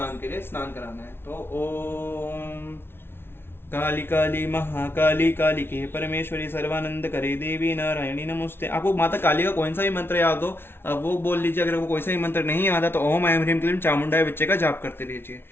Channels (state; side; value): late; right; 0.11 ms